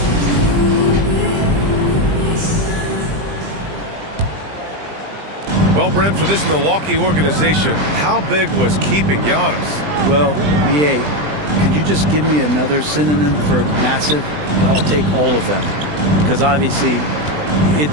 Well, Brent, for this Milwaukee organization, how big was keeping Giannis? Well, B.A., could you just give me another synonym for massive? I'll take all of them. Because obviously,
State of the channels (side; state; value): left; late; 20 ms